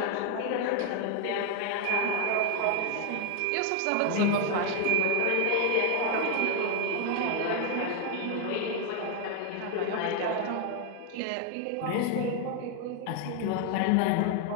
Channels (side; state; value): both; different; correlation 0.01